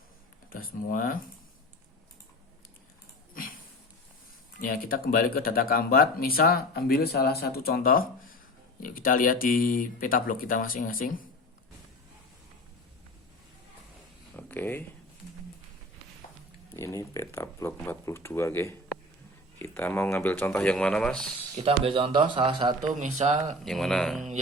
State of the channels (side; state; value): both; normal; correlation 0.35